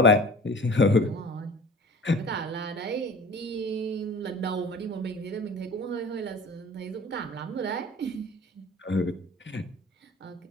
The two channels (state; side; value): normal; both; correlation 0.42